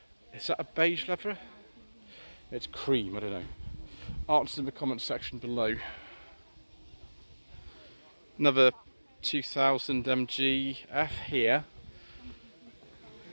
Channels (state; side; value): inverted; both; correlation -1.00